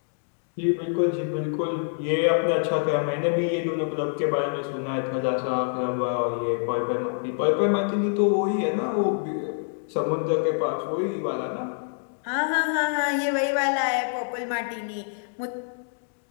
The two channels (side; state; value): right; silent; digital silence